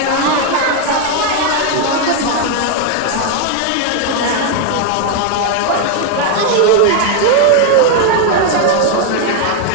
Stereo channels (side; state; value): both; different; correlation 0.01